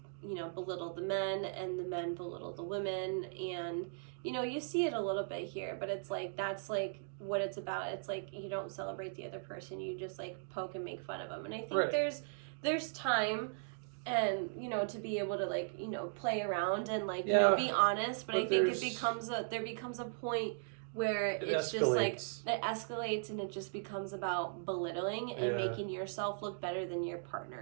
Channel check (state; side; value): silent; left; digital silence